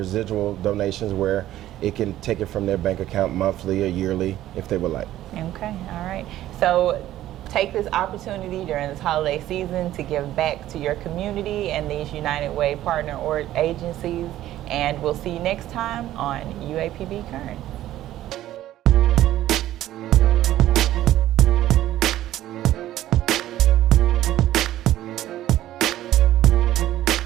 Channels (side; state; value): left; quieter; 13.7 dB